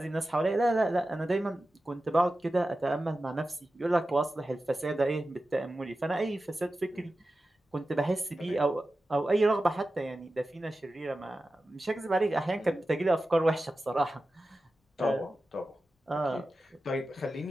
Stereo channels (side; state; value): both; normal; correlation 0.94